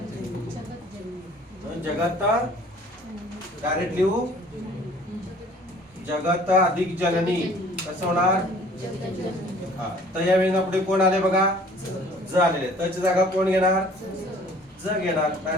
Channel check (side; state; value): both; normal; correlation 0.52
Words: जगत डायरेक्ट लिहू. जगत अधिक जननी कसं होणार. हा तर या वेळेला पुढे कोण आले बघा. ज आलेले. तची जागा कोण घेणार. ज घेणार.